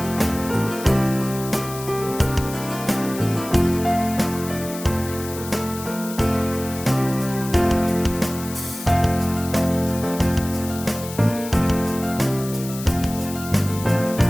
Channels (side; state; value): left; noise; hiss, 12 dB below the sound